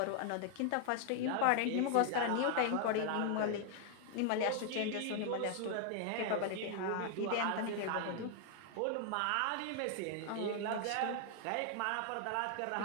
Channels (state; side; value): different; both; correlation 0.00